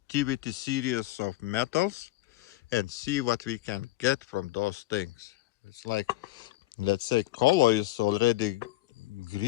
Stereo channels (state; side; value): quieter; right; 17.0 dB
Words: series of metals and see what we can get from those things. It's like, let's say color is already